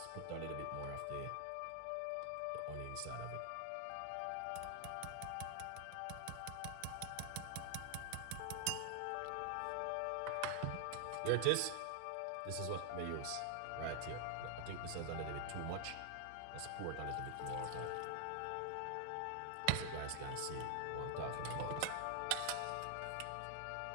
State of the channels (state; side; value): different; both; correlation 0.00